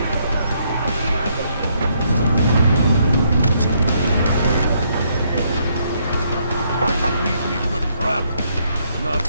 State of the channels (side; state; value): both; inverted; correlation -0.72